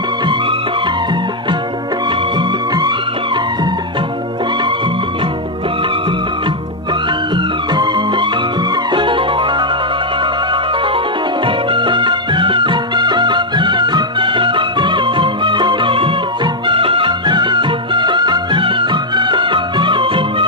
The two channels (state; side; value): normal; both; correlation -0.02